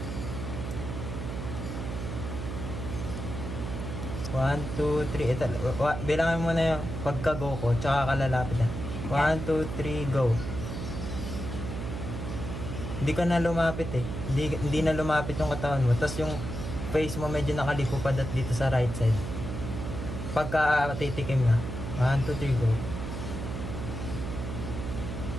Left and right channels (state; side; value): noise; right; hum, 6 dB below the sound